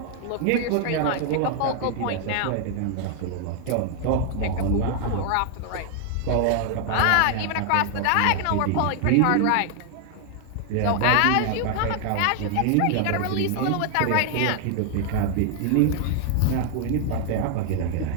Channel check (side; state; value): both; different; correlation 0.00